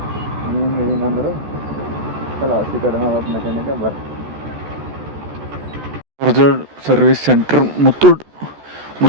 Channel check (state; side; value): late; left; 14 ms